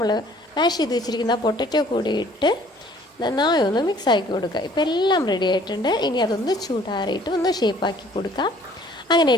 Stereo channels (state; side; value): normal; both; correlation 0.56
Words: മാഷ് ചെയ്ത് വെച്ചിരിക്കുന്ന പൊട്ടറ്റോ കൂടി ഇട്ട് നന്നായി ഒന്ന് മിക്സ് ആക്കി കൊടുക്കുക. ഇപ്പോൾ എല്ലാം റെഡി ആയിട്ടുണ്ട്. ഇനി അതൊന്ന് ചൂടാറിയിട്ട് ഒന്ന് ഷേപ്പാക്കി കൊടുക്കുക. അങ്ങനെ